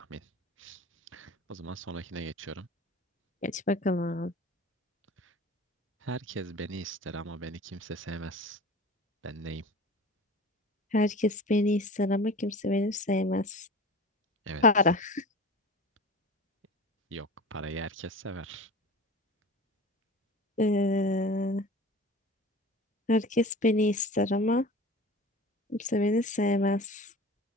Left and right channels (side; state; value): both; normal; correlation 0.37